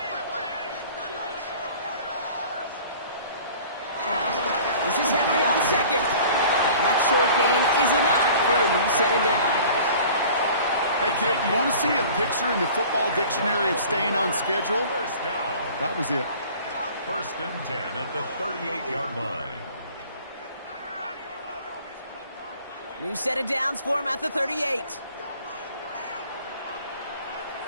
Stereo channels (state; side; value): inverted; both; correlation -0.46